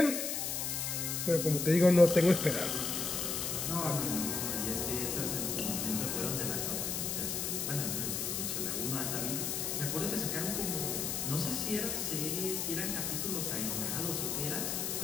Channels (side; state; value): left; noise; hiss, 1 dB below the sound